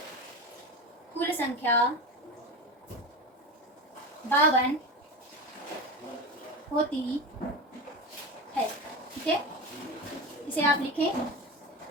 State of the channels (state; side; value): normal; both; correlation 0.24